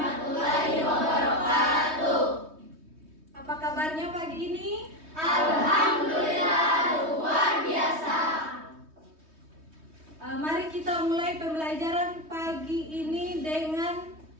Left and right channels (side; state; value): left; late; 3.2 ms